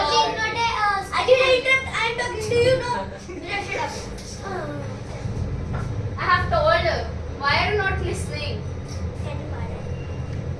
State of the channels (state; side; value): identical; both; correlation 1.00